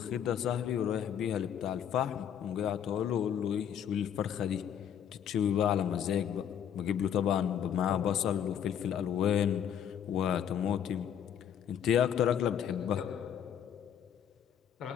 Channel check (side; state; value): right; quieter; 9.0 dB